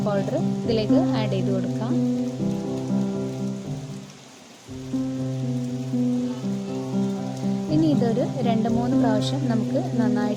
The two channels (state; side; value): identical; both; correlation 1.00